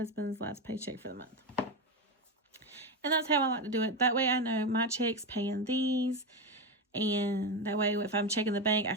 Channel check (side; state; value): both; normal; correlation 0.14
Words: last paycheck for the month. And that's how I like to do it. That way I know my check's paying these. And that way if I'm checking the bank, I